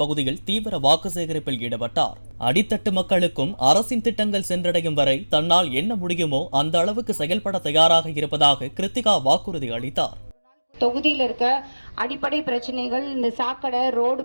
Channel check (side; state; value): both; inverted; correlation -1.00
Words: பகுதியில் தீவிர வாக்கு சேகரிப்பில் ஈடுபட்டார். அடித்தட்டு மக்களுக்கும் அரசின் திட்டங்கள் சென்றடையும் வரை தன்னால் என்ன முடியுமோ அந்த அளவுக்கு செயல்பட தயாராக இருப்பதாக கிருத்திகா வாக்குறுதி அளித்தார். தொகுதியில் இருக்க அடிப்படை பிரச்சனைகள், இந்த சாக்கடை, ரோடு